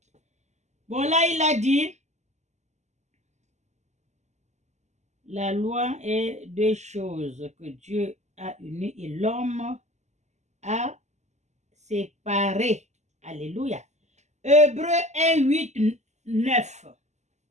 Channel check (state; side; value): late; left; 0.33 ms